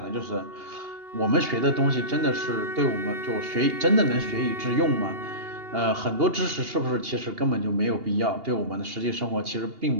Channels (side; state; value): left; late; 2.8 ms